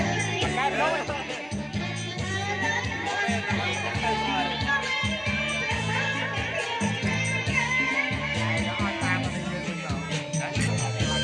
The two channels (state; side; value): identical; both; correlation 1.00